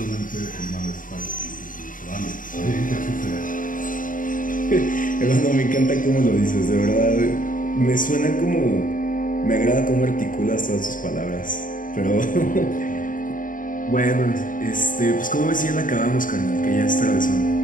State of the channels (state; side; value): late; right; 0.39 ms